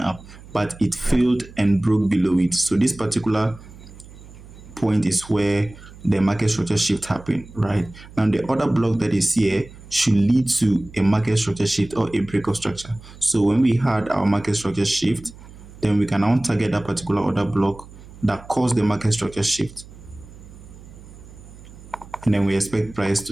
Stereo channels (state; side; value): noise; right; hum, 19 dB below the sound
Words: up, but it failed and broke below it. So this particular point is where the market structure shift happened, right? Now the order block that is here should lead to a market structure shift or a breakout structure. So when we had our market structure shift, then we can now target that particular order block that caused the market structure shift, and then we expect price